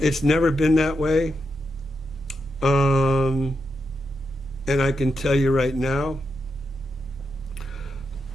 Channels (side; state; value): both; normal; correlation 0.85